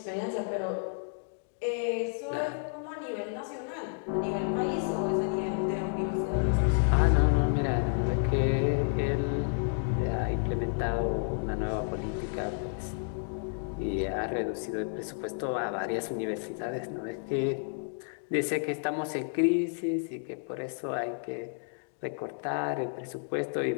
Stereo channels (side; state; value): right; silent; digital silence